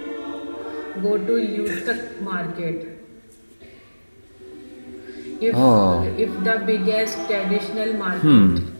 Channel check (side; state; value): both; inverted; correlation -1.00